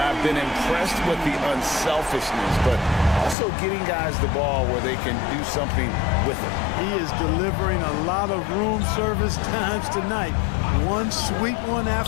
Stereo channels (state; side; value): drops out; right; at 3.4 s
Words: I've been impressed with the unselfishness, but also getting guys the ball where they can do something with it. He is delivering a lot of room service times tonight. One sweet one